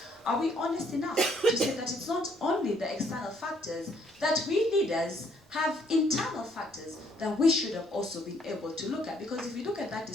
Are we honest enough to say that it's not only the external factors, that we leaders have internal factors that we should have also been able to look at? Because if you look at that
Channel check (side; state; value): both; normal; correlation 0.66